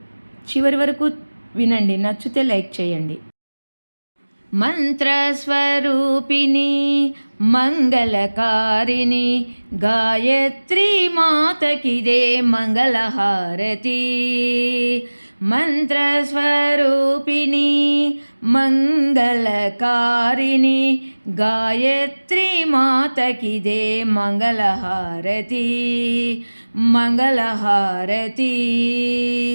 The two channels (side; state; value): both; inverted; correlation -1.00